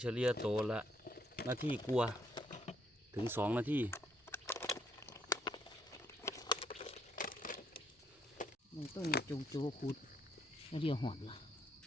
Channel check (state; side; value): normal; both; correlation 0.71